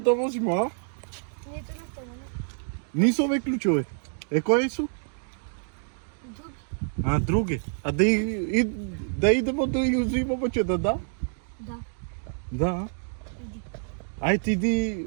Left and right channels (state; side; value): silent; left; digital silence